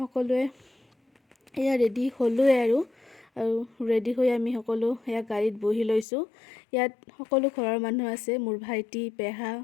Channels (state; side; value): drops out; right; at 6.1 s